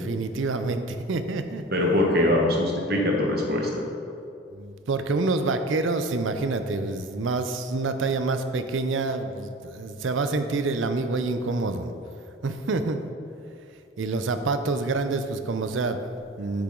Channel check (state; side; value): normal; both; correlation 0.36